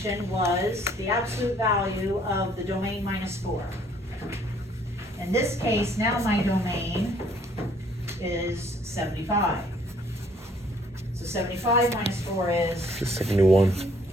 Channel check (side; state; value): both; normal; correlation 0.62